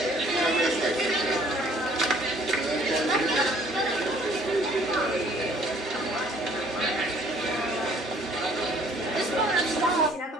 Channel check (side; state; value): both; normal; correlation 0.58